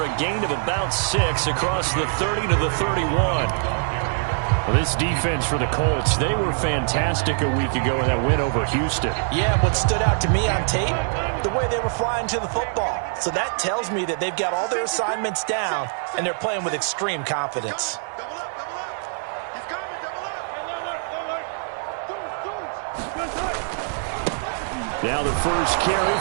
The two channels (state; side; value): silent; left; digital silence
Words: a gain of about 6 across the 30 to the 31. Well, this defense for the Colts, they were fantastic a week ago in that win over Houston. Yeah, what stood out to me on tape, the way they were flying to the football. So that tells me that they've got all their assignments down, and they're playing with extreme confidence. Now the first carry